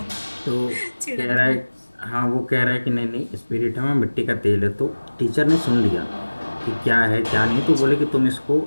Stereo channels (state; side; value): inverted; both; correlation -1.00